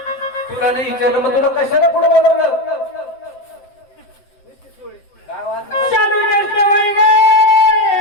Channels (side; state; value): right; late; 7.8 ms